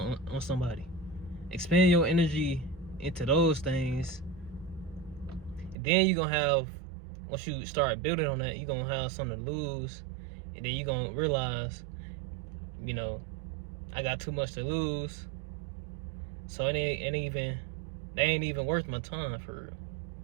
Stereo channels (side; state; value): left; drops out; at 5.8 s